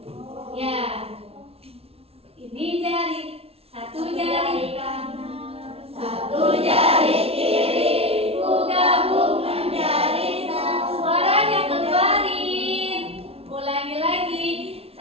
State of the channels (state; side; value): late; left; 0.29 ms